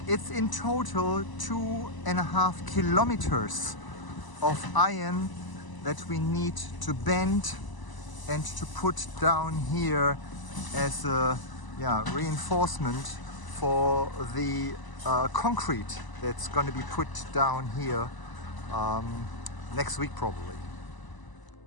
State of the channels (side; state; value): right; late; 1.0 ms